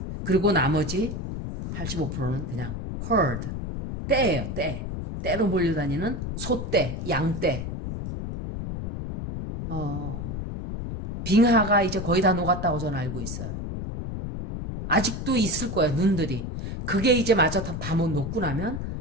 그리고 나머지 85%는 그냥 herd, 떼예요, 떼. 떼로 몰려다니는 소떼, 양떼. 빙하가 이제 거의 다 녹았다고 저는 알고 있어요. 아직도 있을 거예요, 눈들이. 그게 이제 마저 다 못 녹고 나면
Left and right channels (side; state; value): left; noise; rumble, 5 dB below the sound